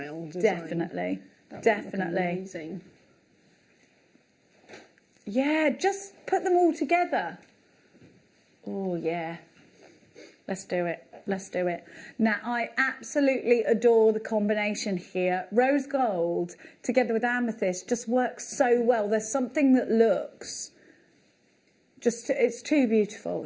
design. Definitely. That would look Definitely. amazing. Yeah, just put them all together. Oh, yeah. Let's do it. Let's do it. Now, I absolutely adore the combination here. Rose gold together with amethyst just works so well. There's something that looks... it's too beautiful.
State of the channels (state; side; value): identical; both; correlation 1.00